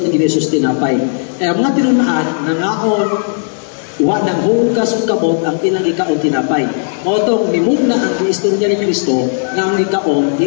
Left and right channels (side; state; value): right; silent; digital silence